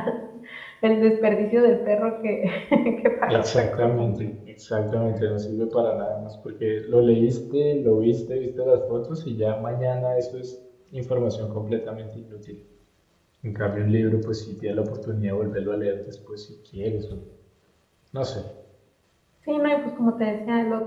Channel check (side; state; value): both; identical; correlation 1.00